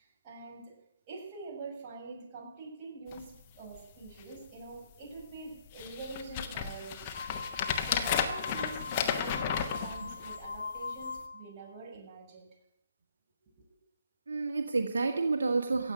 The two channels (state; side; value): inverted; both; correlation -0.65